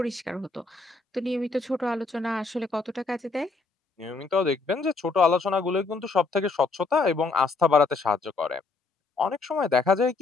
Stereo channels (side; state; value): right; quieter; 4.0 dB